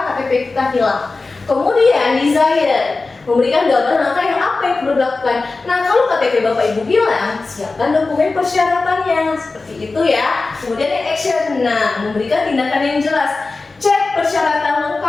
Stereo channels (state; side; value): quieter; right; 3.7 dB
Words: KTP kita hilang. Kemudian desire, memberikan gambaran langkah yang apa yang perlu dilakukan. Nah kalau KTP Bapak Ibu bilang, siapkan dokumen persyaratannya, seperti itu ya. Kemudian yang action, nah memberikan tindakan yang jelas. Cek persyaratan